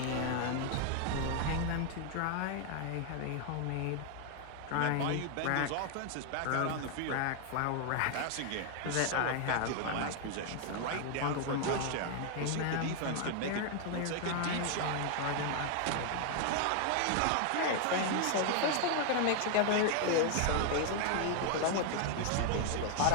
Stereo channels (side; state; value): both; different; correlation 0.00